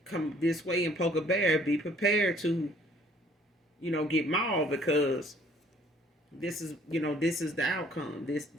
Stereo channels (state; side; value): normal; both; correlation 0.59